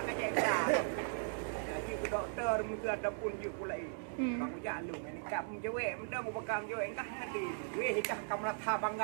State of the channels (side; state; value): left; silent; digital silence